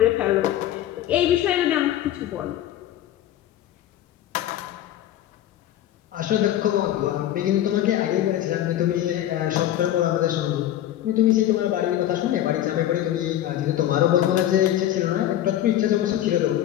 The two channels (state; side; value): quieter; right; 12.4 dB